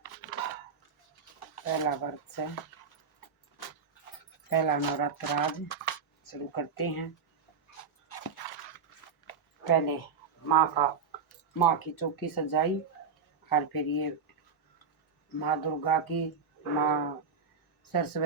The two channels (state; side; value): quieter; left; 5.8 dB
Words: पहला व्रत से पहला नवरात्र आज शुरू करते हैं। पहले माँ की चौकी सजाई और फिर ये माँ दुर्गा की, माँ